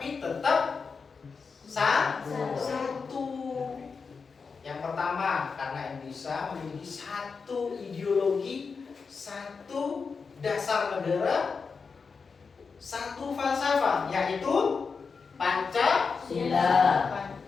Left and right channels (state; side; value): quieter; right; 5.1 dB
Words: tetap satu. Yang pertama, karena Indonesia memiliki satu ideologi, satu dasar negara, satu falsafah, yaitu Pancasila.